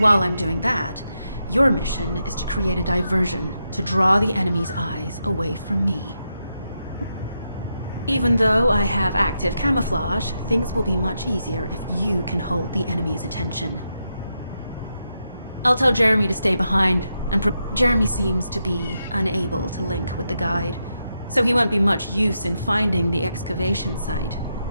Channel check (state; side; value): inverted; both; correlation -0.84